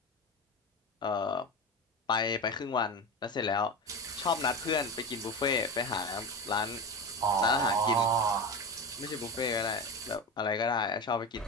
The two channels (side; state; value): both; normal; correlation 0.23